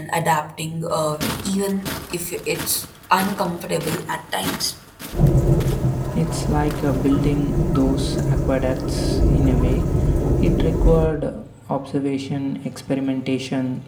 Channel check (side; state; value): both; identical; correlation 1.00